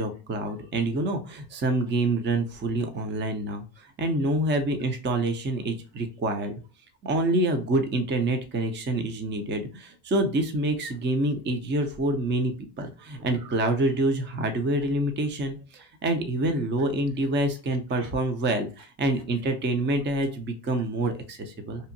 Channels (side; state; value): both; normal; correlation 0.36